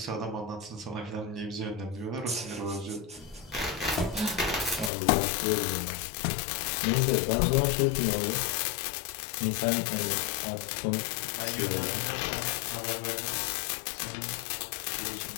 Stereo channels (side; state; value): right; drops out; at 4.9 s